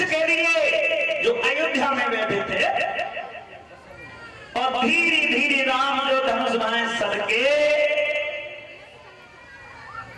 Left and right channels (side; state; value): both; identical; correlation 1.00